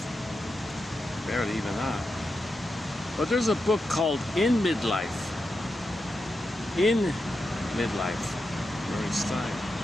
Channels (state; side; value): normal; both; correlation 0.88